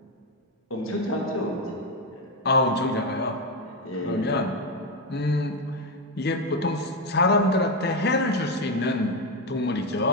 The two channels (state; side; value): normal; both; correlation 0.10